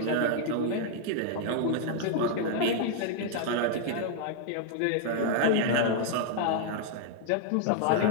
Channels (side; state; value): both; different; correlation 0.00